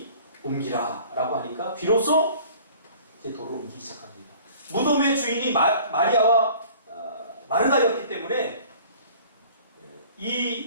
옮기라 라고 하니까 비로소 이제 돌을 옮기기 시작합니다. 무덤의 주인이 마리아와 마르다였기 때문에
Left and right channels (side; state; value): both; inverted; correlation -0.49